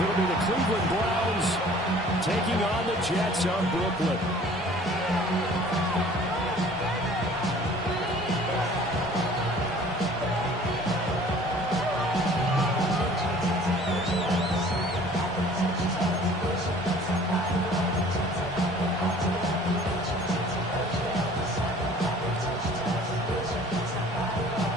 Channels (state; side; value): normal; both; correlation 0.50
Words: it'll be the Cleveland Browns taking on the Jets of Brooklyn.